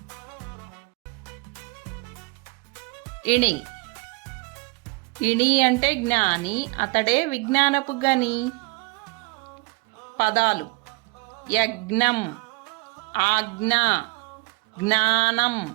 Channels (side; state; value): left; quieter; 29.5 dB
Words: ఇణి. ఇణి అంటే జ్ఞాని, అతడే విజ్ఞానపు గని. పదాలు: యజ్ఞం, ఆజ్ఞ, జ్ఞానం,